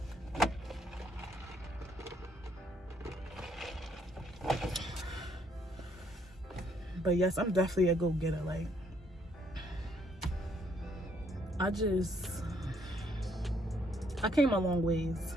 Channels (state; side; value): normal; both; correlation 0.69